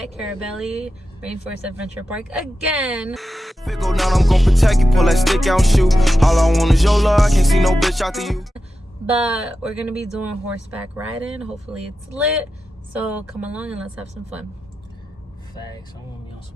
Carabali Rainforest Adventure Park again. If it go down, I'm gonna protect you, pull that stick out and shoot. All I want is your love, I can't see no bitch after you. But we're gonna be doing horseback riding. Hopefully it's lit. So come along and let's have some fun. Facts, I want to be on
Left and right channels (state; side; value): normal; both; correlation 0.91